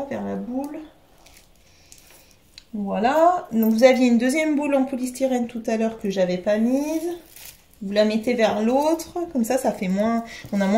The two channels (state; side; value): identical; both; correlation 1.00